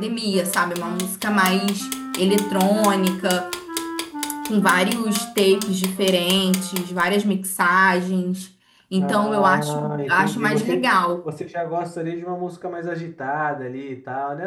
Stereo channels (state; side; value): identical; both; correlation 1.00